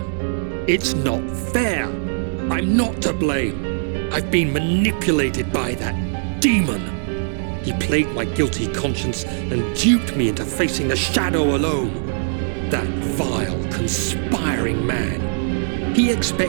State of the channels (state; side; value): silent; left; digital silence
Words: It's not fair. I'm not to blame. I've been manipulated by that demon. He played my guilty conscience and duped me into facing the shadow alone. That vile, conspiring man. He